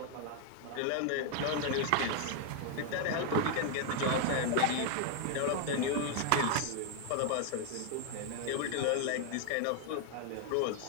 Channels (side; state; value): both; different; correlation 0.00